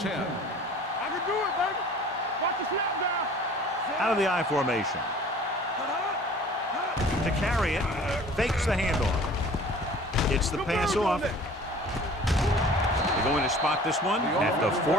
I can do it, baby. Watch the snap down. Out of the I formation. To carry it, fakes the handoff. Gets the pass off. They're going to spot this one at the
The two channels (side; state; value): both; normal; correlation 0.47